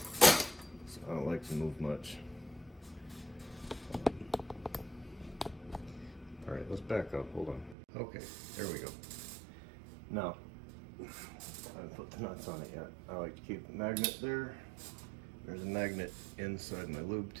I don't like to move much. All right, let's back up, hold on. Okay, there we go. Now, I haven't put the nuts on it yet. I like to keep the magnet there. There's a magnet inside my lube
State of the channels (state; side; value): drops out; left; at 7.8 s